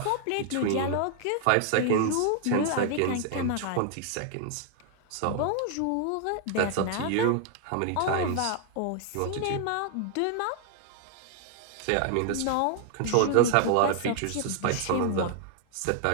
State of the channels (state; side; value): different; both; correlation 0.00